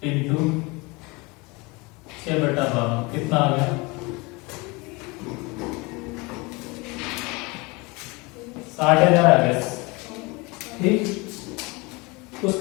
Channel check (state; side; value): quieter; right; 26.1 dB